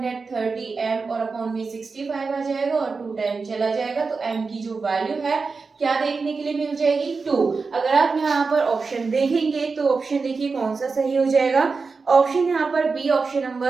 और अपॉन में 65 आ जाएगा और 2 टाइम चला जाएगा। तो m की जो वैल्यू है क्या देखने के लिए मिल जाएगी, 2। अगर आप यहाँ पर ऑप्शन देखेंगे तो ऑप्शन देखिए कौन सा सही हो जाएगा। ऑप्शन यहाँ पर बी, ऑप्शन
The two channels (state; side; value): quieter; left; 4.5 dB